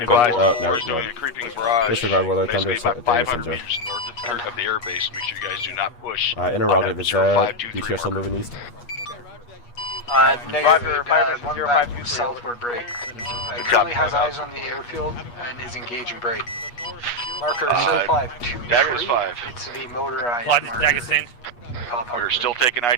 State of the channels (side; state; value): right; late; 8.3 ms